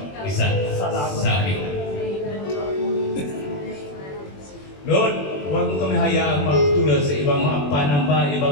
isa sa amin. Lord, huwag mo kami hayaan magtulad sa ibang mga panamba,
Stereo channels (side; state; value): right; late; 21 ms